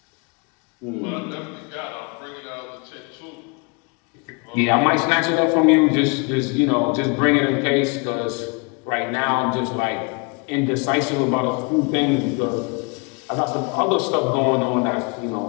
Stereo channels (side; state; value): right; quieter; 31.6 dB